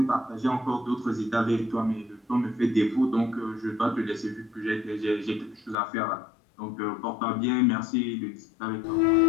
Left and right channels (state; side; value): drops out; right; at 5.8 s